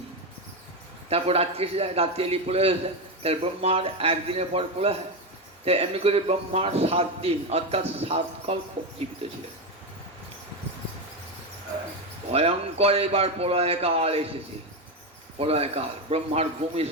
তারপর রাত্রি এসে যায়, রাত্রি এলি প্রলয় হয়ে যায়, তাহলে ব্রহ্মার 1 দিনের পর প্রলয় হয়। তাই এমনি করে ব্রহ্মার 7 দিন অর্থাৎ 7 কল্প জীবিত ছিলেন। ভয়ঙ্কর এবার প্রলয়কাল এসেছে। প্রলয়কাল, ব্রহ্মার ঘুম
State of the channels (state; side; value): normal; both; correlation 0.12